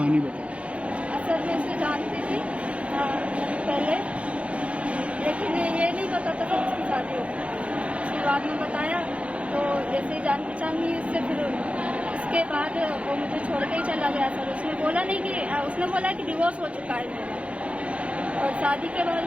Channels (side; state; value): left; late; 0.062 ms